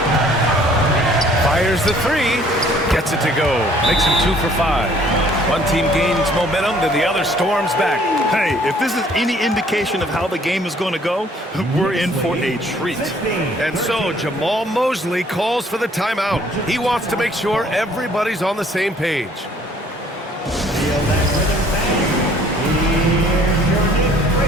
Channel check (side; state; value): both; normal; correlation 0.59